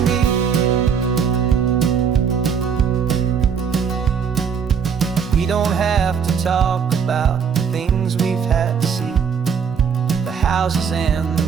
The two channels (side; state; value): left; quieter; 6.8 dB